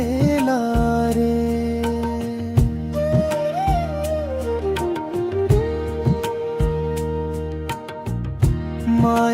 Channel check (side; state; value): both; identical; correlation 1.00